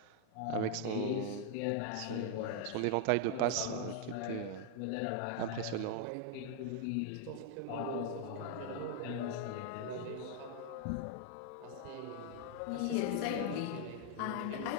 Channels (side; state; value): both; different; correlation 0.00